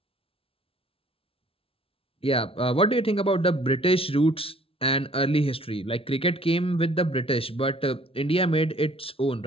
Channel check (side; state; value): right; late; 0.26 ms